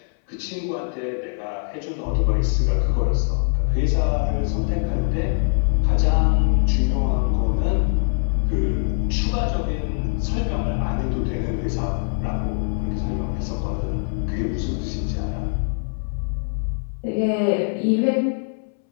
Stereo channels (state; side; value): silent; right; 64 dB below the other